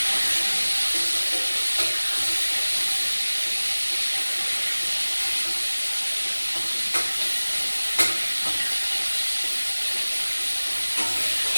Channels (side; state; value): both; inverted; correlation -1.00